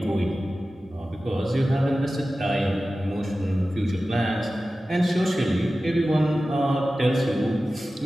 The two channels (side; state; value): both; normal; correlation 0.95